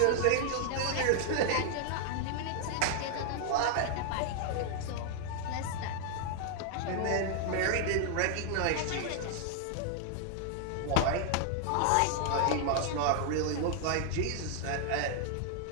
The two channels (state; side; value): different; both; correlation 0.00